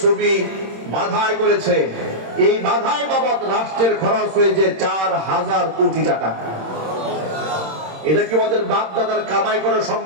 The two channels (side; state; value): left; late; 26 ms